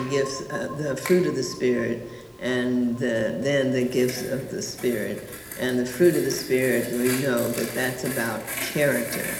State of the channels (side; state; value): both; identical; correlation 1.00